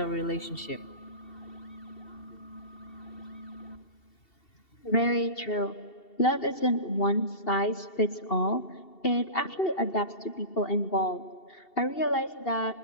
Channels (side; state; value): right; late; 2.7 ms